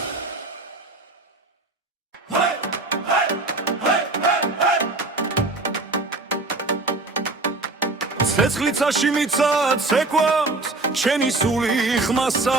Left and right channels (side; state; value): left; quieter; 3.1 dB